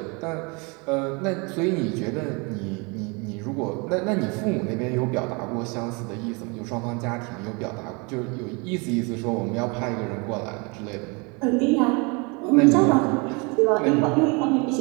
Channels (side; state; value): left; quieter; 30.1 dB